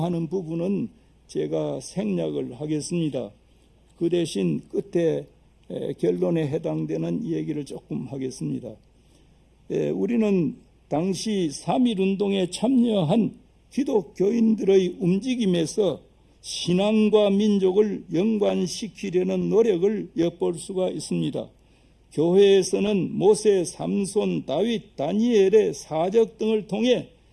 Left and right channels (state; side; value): identical; both; correlation 1.00